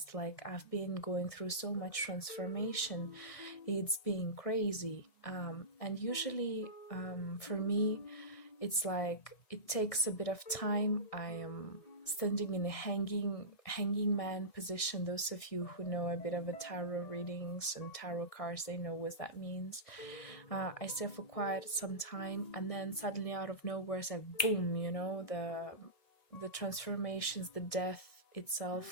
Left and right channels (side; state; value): right; late; 1.6 ms